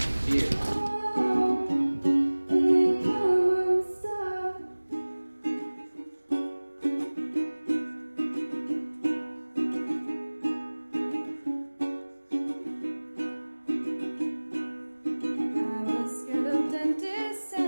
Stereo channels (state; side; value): inverted; both; correlation -1.00